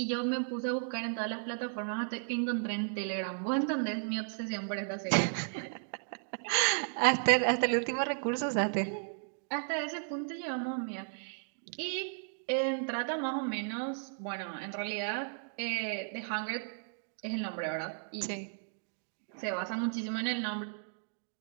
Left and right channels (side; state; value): left; silent; digital silence